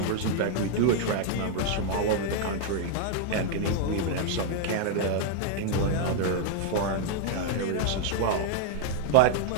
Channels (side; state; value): both; different; correlation 0.00